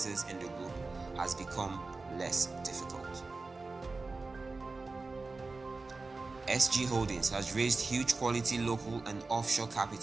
in the group has become less difficult. SGHoldings has raised huge quality local and offshore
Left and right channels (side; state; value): left; quieter; 3.7 dB